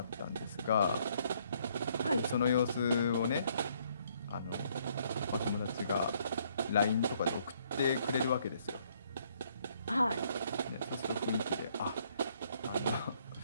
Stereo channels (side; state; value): both; inverted; correlation -0.67